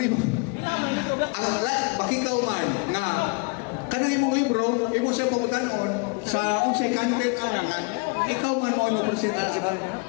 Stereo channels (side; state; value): right; quieter; 33.2 dB